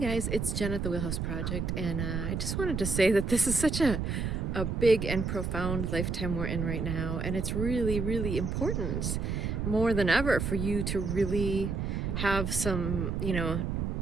it's Jen at the Wheelhouse Project, and I just wanted to say that this is such a big and profound lifetime we're in right now, and it's really, really important more than ever for you to really have some,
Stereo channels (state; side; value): noise; right; rumble, 1 dB below the sound